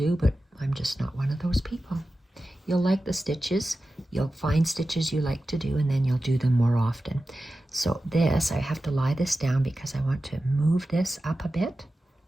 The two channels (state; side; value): normal; both; correlation 0.94